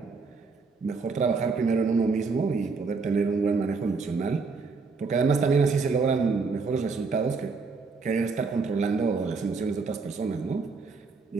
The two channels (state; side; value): quieter; left; 4.5 dB